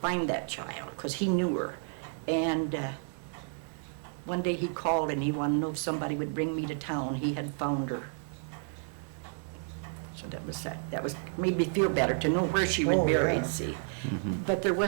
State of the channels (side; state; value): left; silent; 55 dB below the other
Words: that child, because he knew her. And one day he called and he wanted to know if somebody would bring me to town. He had found her. So that was sad. That made me feel better to know where she was buried, see. But there